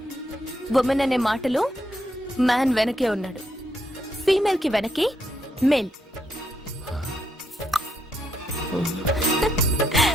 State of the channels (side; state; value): both; normal; correlation 0.78